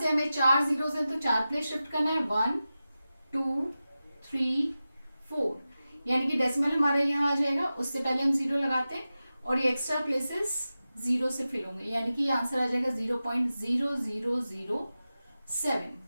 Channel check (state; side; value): inverted; both; correlation -0.94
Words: हमें 4 जीरोस हैं तो 4 प्लेस शिफ्ट करना है 1 2 3 4, यानी कि डेसिमल हमारा यहाँ आ जाएगा. उससे पहले हम 0 लगाते हैं और ये एक्स्ट्रा प्लेसेस जीरो से फिल होंगे, यानी कि आंसर आ जाएगा 0.0007।